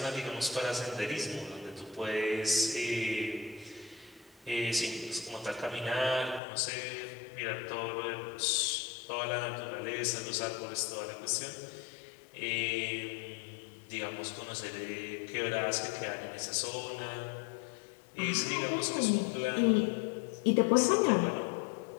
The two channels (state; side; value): drops out; right; at 6.4 s